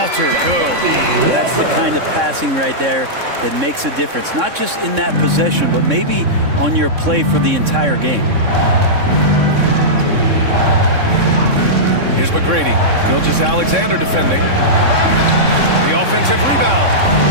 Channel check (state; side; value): late; left; 3.6 ms